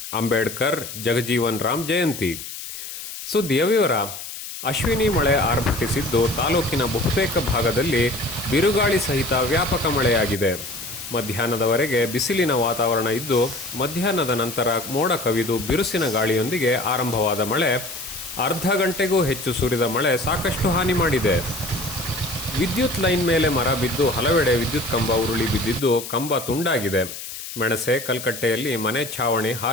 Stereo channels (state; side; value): noise; left; hiss, 10 dB below the sound